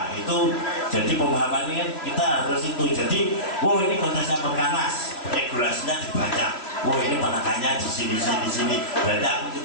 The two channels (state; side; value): late; right; 2.9 ms